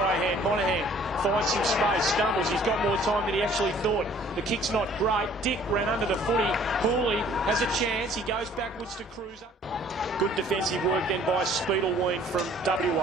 hand. Monahan finds some space. Stumbles. He's got more time than he actually thought. The kick's not great. Dick ran under the footy. Hooley has a chance. He goes backwards to Cruiser. Good defensive work then by Speedleween from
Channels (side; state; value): both; normal; correlation 0.56